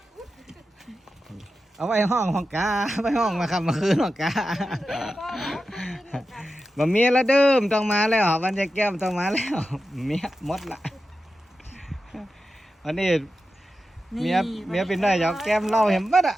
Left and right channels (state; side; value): normal; both; correlation 0.91